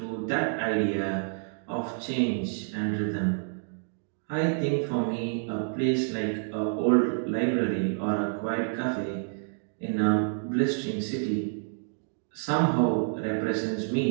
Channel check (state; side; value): silent; left; digital silence